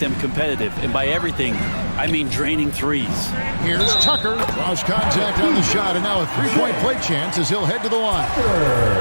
competitive. And by everything, I mean draining threes. Here's Tucker. Draws contact on the shot, and now a three-point play chance as he'll head to the line.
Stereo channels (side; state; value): both; inverted; correlation -1.00